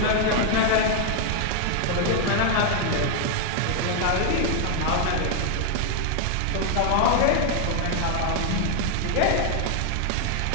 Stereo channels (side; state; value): both; different; correlation 0.00